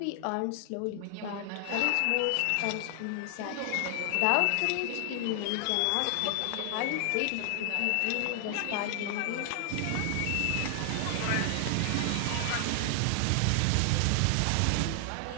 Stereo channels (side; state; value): both; different; correlation 0.00